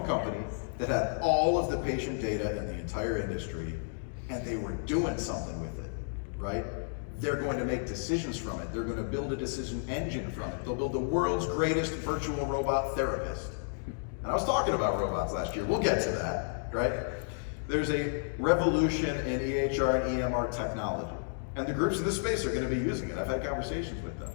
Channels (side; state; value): right; silent; digital silence